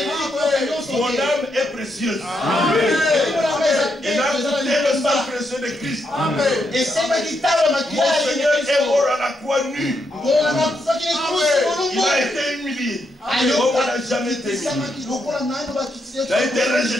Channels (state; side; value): normal; both; correlation 0.80